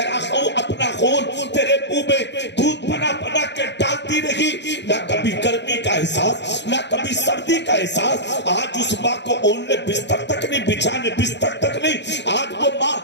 اپنا خون تیرے منہ میں دودھ بنا بنا کے ڈالتی رہی, نہ کبھی گرمی کا احساس نہ کبھی سردی کا احساس. آج اس ماں کو اوننے بستر تک نہیں, بچھانے بستر تک نہیں. آج وہ ماں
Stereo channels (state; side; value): late; right; 0.51 ms